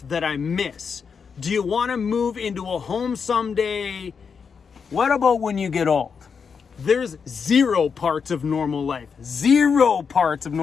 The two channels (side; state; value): right; quieter; 6.0 dB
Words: that I miss? Do you want to move into a home someday? What about when you get old? There's 0 parts of normal life. 0 parts of